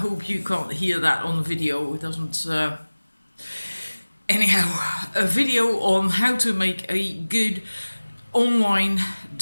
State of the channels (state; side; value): inverted; both; correlation -1.00